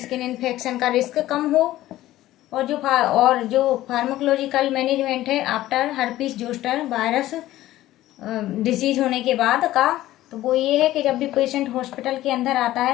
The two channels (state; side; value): quieter; right; 15.1 dB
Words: इन्फेक्शन का रिस्क कम हो। और जो फार्माकोलॉजिकल मैनेजमेंट है after herpes zoster virus disease होने के बाद का, तो वो ये है कि जब भी पेशेंट हॉस्पिटल के अंदर आता